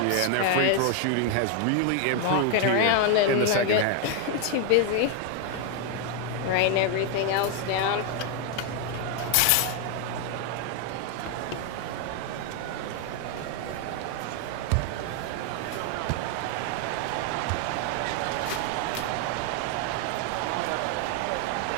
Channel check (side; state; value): both; different; correlation 0.01